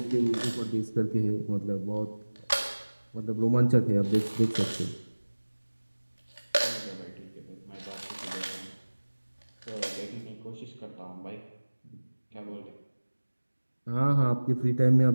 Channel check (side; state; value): both; inverted; correlation -1.00